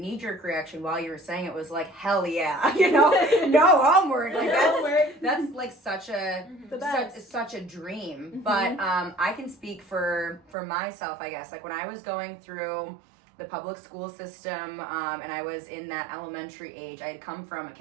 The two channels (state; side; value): drops out; left; at 10.4 s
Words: reaction while you were saying it was like, hell yeah, you know, no homework. Like that's like such a such a dream. But I can speak for myself, I guess. Like when I was going through the public school system, and I was in that elementary age. I had come from a